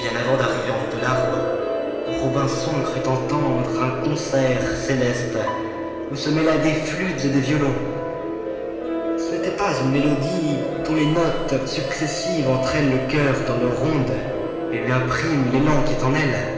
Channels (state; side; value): identical; both; correlation 1.00